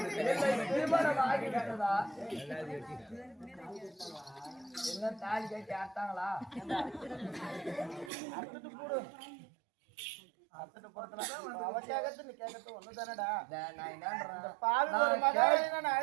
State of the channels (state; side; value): drops out; left; at 8.1 s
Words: திருமணம் ஆகிட்டதா? என்ன தாலி கட்டி ஆட்டாங்களா? அத்துட்டு போடு, அத்துட்டு போறதுல அவ கேட்கறது நீ கேட்கறது ஒண்ணுதானடா. நான் என்ன பாவி ஒரு மகளை நான்